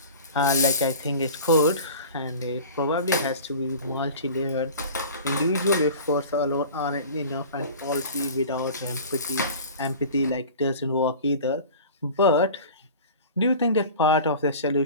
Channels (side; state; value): both; inverted; correlation -0.39